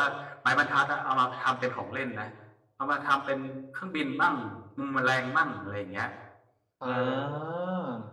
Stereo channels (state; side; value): identical; both; correlation 1.00